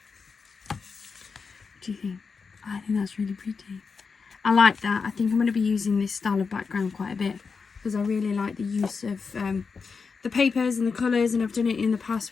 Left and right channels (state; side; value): quieter; right; 5.1 dB